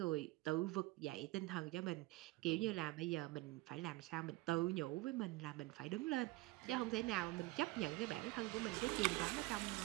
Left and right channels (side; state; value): left; quieter; 20.0 dB